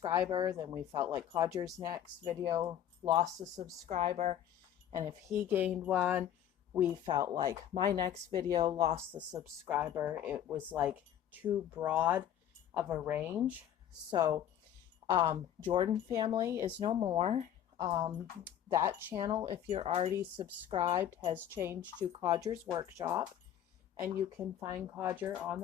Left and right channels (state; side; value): quieter; right; 10.4 dB